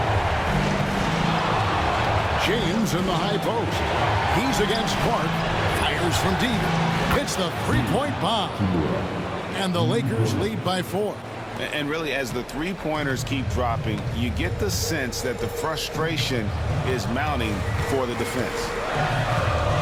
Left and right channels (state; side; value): identical; both; correlation 1.00